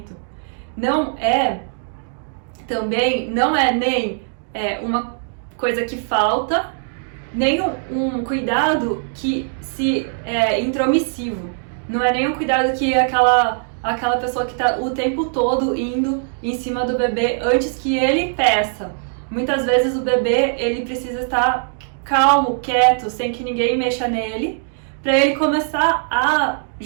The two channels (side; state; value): left; silent; digital silence